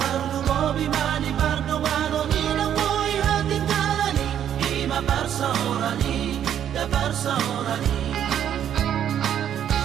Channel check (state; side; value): quieter; left; 9.8 dB